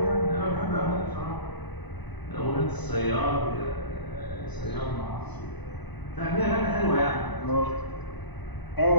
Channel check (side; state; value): right; late; 1.0 ms